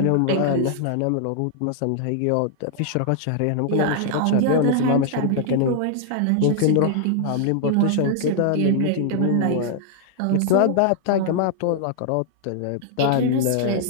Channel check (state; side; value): different; both; correlation 0.00